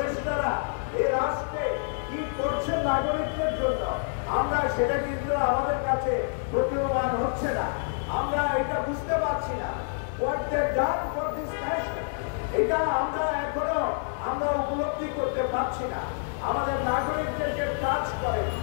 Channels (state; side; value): silent; right; digital silence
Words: এই রাষ্ট্রে কি করছে নাগরিকদের জন্য, আমরা সেটা কিন্তু আমাদের কাছে প্রতীয়মান হচ্ছে না। আমরা এটা বুঝতে পারছি না। What they done for this nation, এটা আমরা এখনো উপলব্ধি করতে পারছি না। আমাদের নাগরিকদের যে কাজ করে,